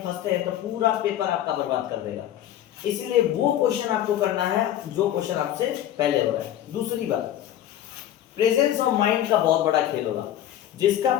फंसते हैं तो पूरा पेपर आपका बर्बाद कर देगा। इसीलिए वो क्वेश्चन आपको करना है जो क्वेश्चन आपसे पहले हो रहा है। दूसरी बात, प्रेजेंस ऑफ माइंड का बहुत बड़ा खेल होगा। जिसका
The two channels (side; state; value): right; quieter; 11.8 dB